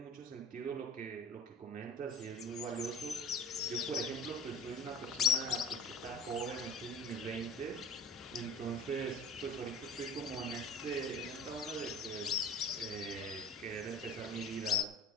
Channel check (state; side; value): normal; both; correlation 0.39